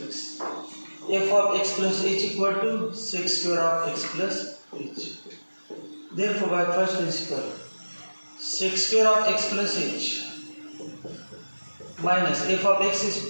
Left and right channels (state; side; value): inverted; both; correlation -1.00